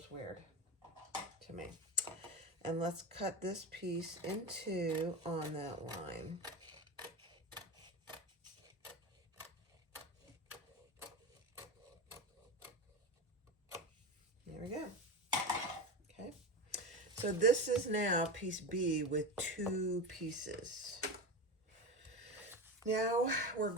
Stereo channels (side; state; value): both; normal; correlation 0.22